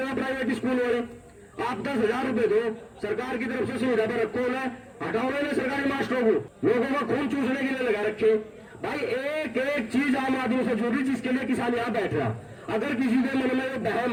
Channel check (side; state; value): both; identical; correlation 1.00